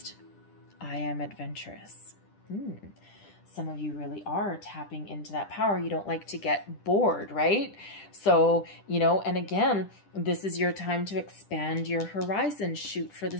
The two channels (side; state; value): right; late; 10 ms